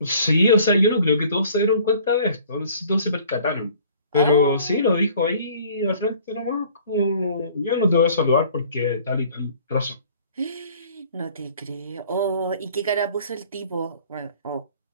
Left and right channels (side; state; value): both; inverted; correlation -0.53